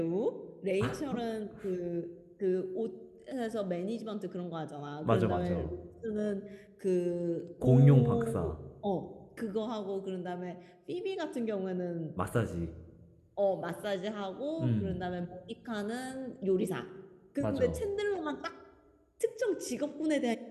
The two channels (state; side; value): identical; both; correlation 1.00